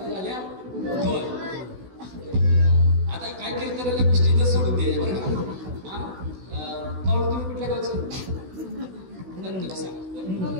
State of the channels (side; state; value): left; late; 16 ms